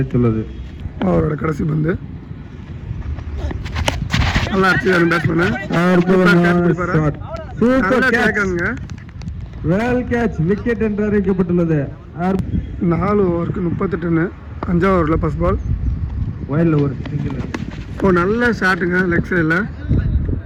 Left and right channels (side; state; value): both; identical; correlation 1.00